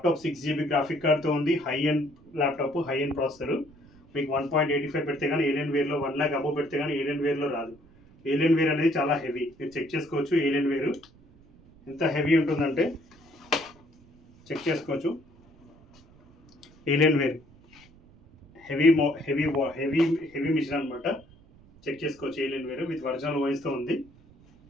6GB గ్రాఫిక్ కార్డ్తో ఉంది. High end laptop, high end processor. మీకు 1.85 పెడితే కానీ ఏలియన్ వేర్లో 1 lakh అబోవ్ పెడితే కానీ ఏలియన్ వేర్లో రాదు. ఏలియన్ వేర్ అనేది చాలా హెవీ, మీరు చెక్ చేసుకోవచ్చు. ఏలియన్ వేరు ఎంత హెవీ ఉంటుందంటే చెక్ చేసుకోవచ్చు. Alienware heavy heavy heavy heavy machine అనమాట. చెక్ చేసుకోవచ్చు. ఏలియన్ వేరు విత్ ఒరిజినల్ వాయిస్తో ఉంది.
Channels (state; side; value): noise; right; rumble, 26 dB below the sound